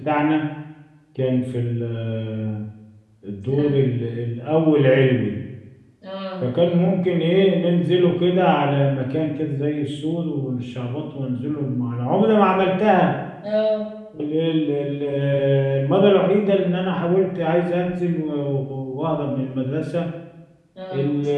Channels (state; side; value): identical; both; correlation 1.00